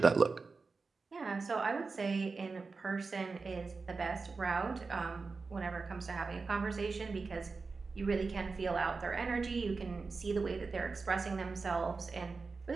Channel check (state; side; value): quieter; left; 4.3 dB